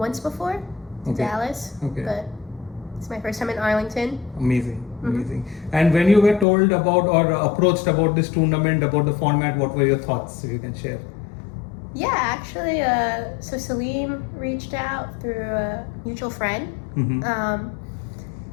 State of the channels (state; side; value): drops out; right; at 6.5 s